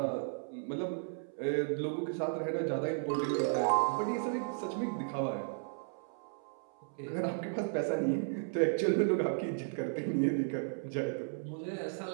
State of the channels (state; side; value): silent; left; 55 dB below the other